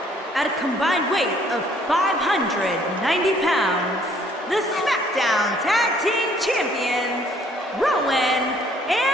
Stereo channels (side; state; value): both; normal; correlation 0.62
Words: At a combined weight of 590 pounds, the SmackDown Tag Team Champions, Rowan